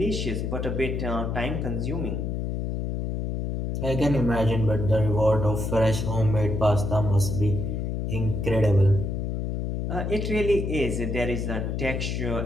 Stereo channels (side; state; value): left; noise; hum, 2 dB below the sound